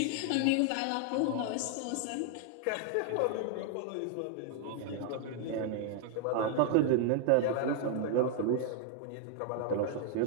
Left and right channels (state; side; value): different; both; correlation 0.00